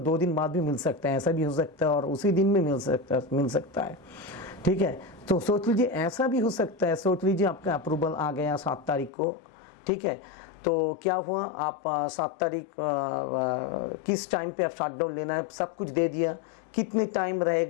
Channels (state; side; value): drops out; right; at 9.1 s